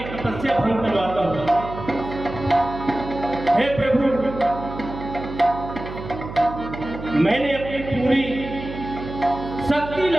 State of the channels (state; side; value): noise; right; hum, 10 dB below the sound